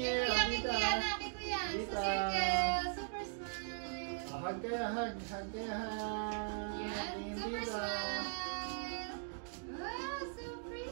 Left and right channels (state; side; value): silent; left; digital silence